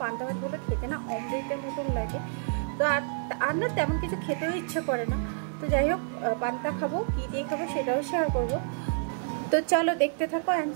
পান্তা ভাত বলো খেতে না অমৃতের মতন লাগে। তো আর না তেমন কিছু খেতেও ইচ্ছে করে না। তো যাই হোক, পান্তা খাবো, কী দিয়ে খাবো সেটাও শেয়ার করবো। তো চলো দেখতে থাকো অ্যান্ড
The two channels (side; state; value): left; silent; digital silence